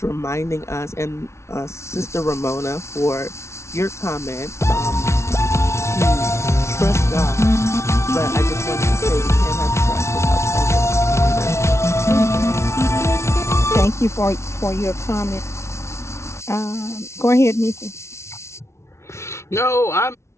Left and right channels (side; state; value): right; late; 0.13 ms